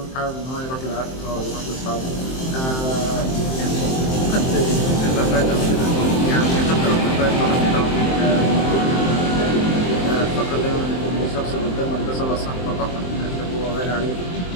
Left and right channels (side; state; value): right; late; 23 ms